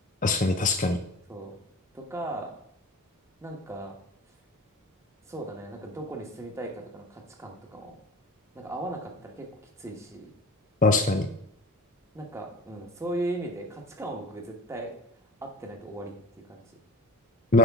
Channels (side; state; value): both; normal; correlation 0.37